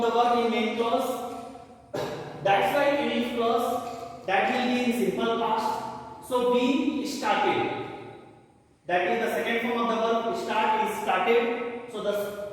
the verb in main clause. That's why in if clause that will be in simple past. So we started. That is the second form of the verb start is started. So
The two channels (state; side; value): identical; both; correlation 1.00